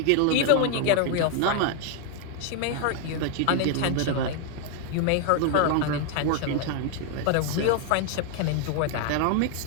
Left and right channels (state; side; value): different; both; correlation 0.00